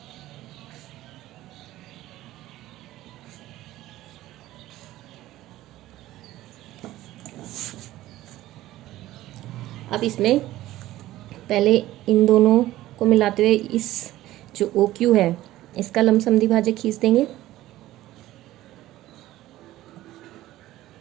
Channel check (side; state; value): left; quieter; 15.5 dB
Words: अब इसमें पहले इन दोनों को मिलाते हुए इस जो ओ क्यू है इसका लंब समद्विभाजक खींच देंगे।